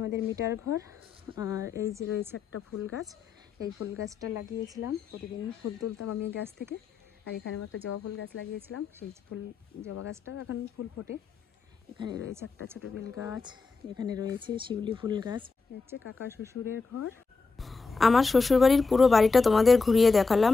আমাদের মিটার ঘর। আর এই যে রয়েছে একটা ফুল গাছ। এই ফুল গাছটা লাগিয়েছিলাম, প্রতিদিন ফুল তুলতাম আমি গাছ থেকে। আর এখানে একটা জবা ফুল গাছ লাগিয়েছিলাম, সেই জবা গাছটাও এখন ফুল ফোটে। এখানে রয়েছে একটা ছোট বেল গাছ, এখানে রয়েছে শিউলি ফুল গাছ। হচ্ছে কাকা শ্বশুরের ঘর। আমার শ্বশুরবাড়ির পুরো বাড়িটা তোমাদের ঘুরিয়ে দেখালাম।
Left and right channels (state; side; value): quieter; right; 4.4 dB